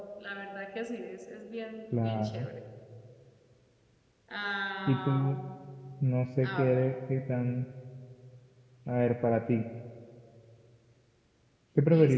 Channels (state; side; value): identical; both; correlation 1.00